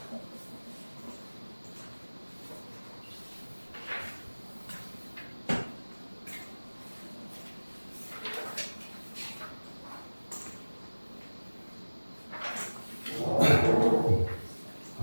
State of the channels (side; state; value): both; inverted; correlation -1.00